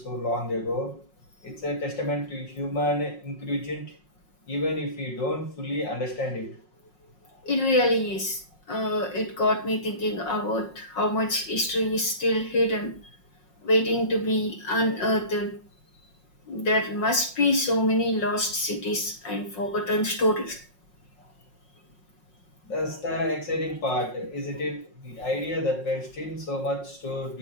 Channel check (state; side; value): late; right; 5.5 ms